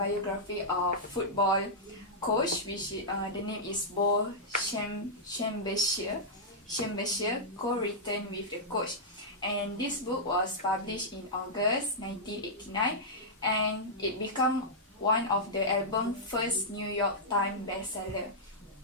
of football coach, which the name is Bo Schembechler, co-written with the coach. And this book was published in August 1989, and it became one of the album's first New York Times bestseller.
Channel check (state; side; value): normal; both; correlation -0.10